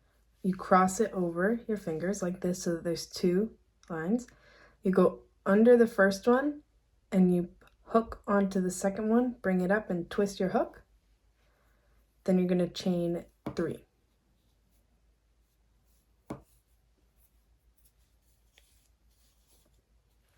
You cross it over your fingers like this so that there's two lines. You go under the first one and you hook onto the second one, bring it up and twist your hook. Then you're going to chain 3.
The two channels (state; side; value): identical; both; correlation 1.00